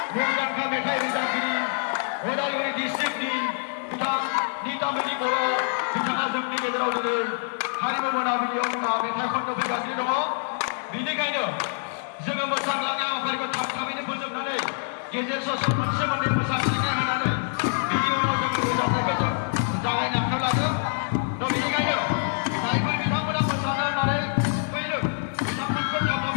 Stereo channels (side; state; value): right; silent; 61 dB below the other